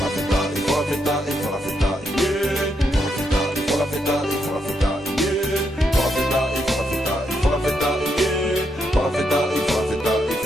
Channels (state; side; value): normal; both; correlation 0.80